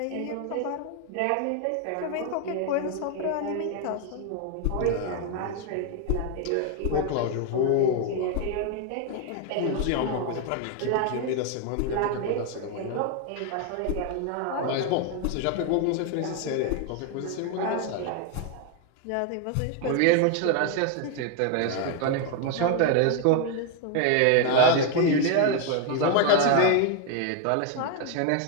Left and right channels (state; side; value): different; both; correlation 0.01